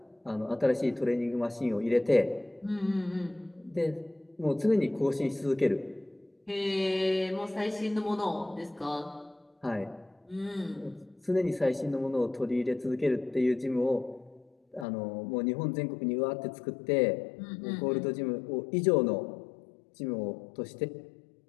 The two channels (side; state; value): right; drops out; at 14.9 s